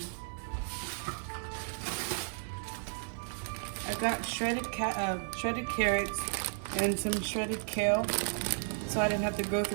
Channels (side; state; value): left; silent; 55 dB below the other